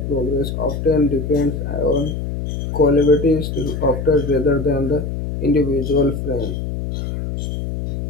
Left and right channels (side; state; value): left; noise; hum, 4 dB below the sound